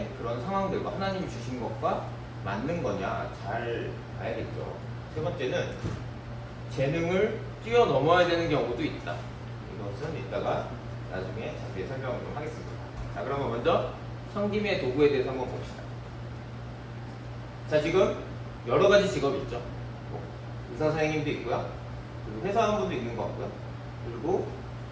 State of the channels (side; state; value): both; identical; correlation 1.00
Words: 그런 상황들과 하나님이 주신 것과 맞는 거냐 잘 봐야겠죠. 세 번째는 재능을 뛰어넘어야 되는 경우도 있다. 이것은 이따가 나중에 자세히 설명을 좀 하겠습니다. 자, 그러면 먼저 섬김의 도구에 대해서 한번 봅시다. 자, 지금 여러 가지 직업이 있죠. 의사 선생님도 있고요. 그리고 회사원분도 있는 것 같고요. 그리고